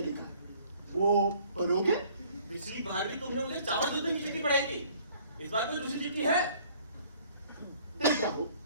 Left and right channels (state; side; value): inverted; both; correlation -0.56